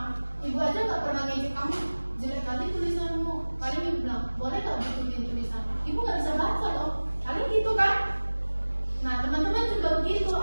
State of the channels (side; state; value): both; inverted; correlation -1.00